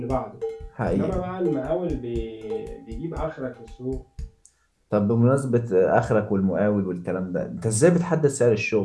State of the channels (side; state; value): both; identical; correlation 1.00